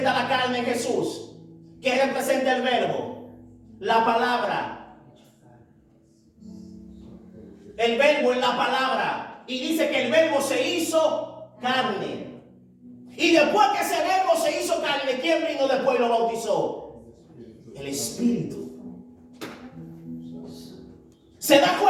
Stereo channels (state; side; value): identical; both; correlation 1.00